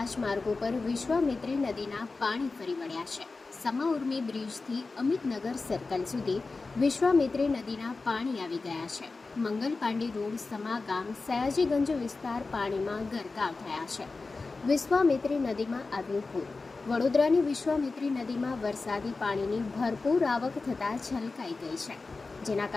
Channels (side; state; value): right; quieter; 3.8 dB